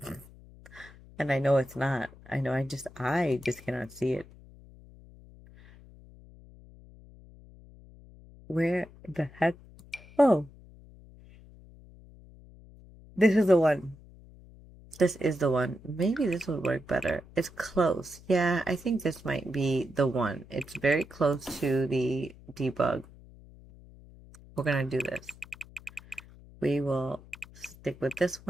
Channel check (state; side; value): noise; left; hum, 21 dB below the sound